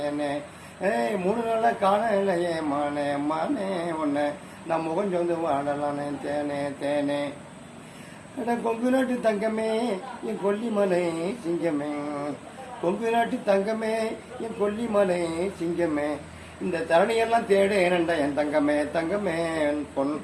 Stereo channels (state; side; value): identical; both; correlation 1.00